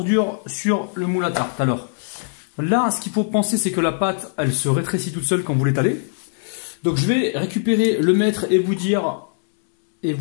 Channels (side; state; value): right; silent; digital silence